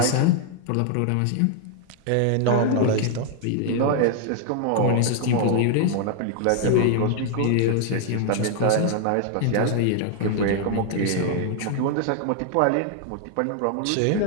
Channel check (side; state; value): both; different; correlation 0.00